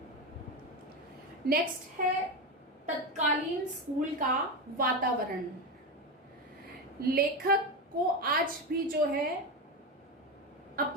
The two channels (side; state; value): both; normal; correlation 0.16